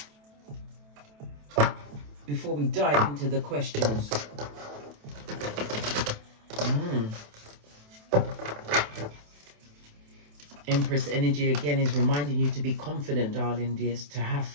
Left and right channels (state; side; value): late; left; 27 ms